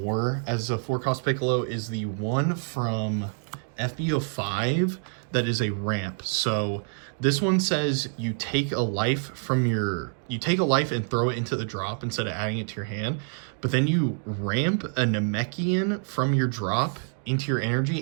as a 4-cost Piccolo is the one from SB05 that is a ramp. So this one says you take a life and throw it into the drop instead of adding it to your hand, but then you ramp a Namekian from your drop into your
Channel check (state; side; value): silent; left; 60 dB below the other